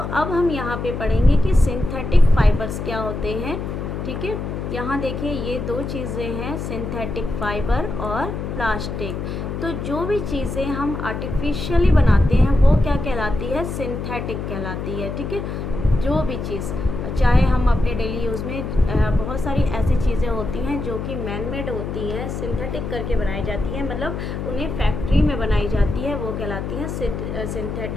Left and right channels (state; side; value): noise; left; hum, 5 dB below the sound